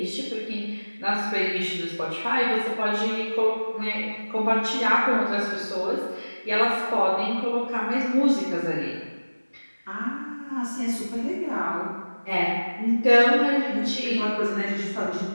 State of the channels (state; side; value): inverted; both; correlation -1.00